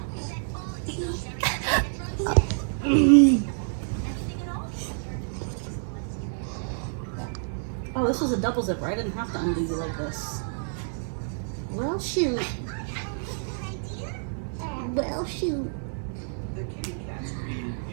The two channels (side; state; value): left; silent; 59 dB below the other